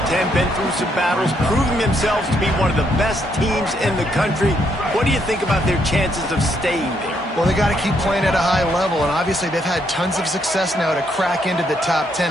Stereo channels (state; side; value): normal; both; correlation 0.74